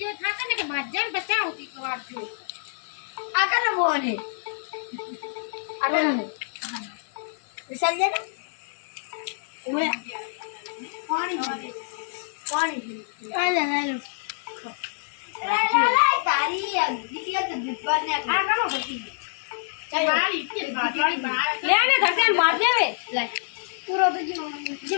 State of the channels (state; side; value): silent; right; digital silence